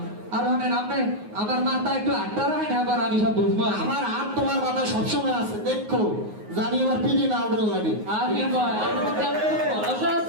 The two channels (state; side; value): late; left; 9.5 ms